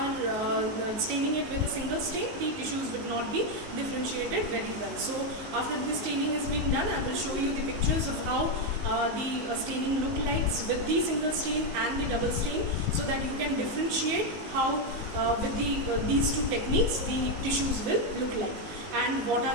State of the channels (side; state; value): left; late; 19 ms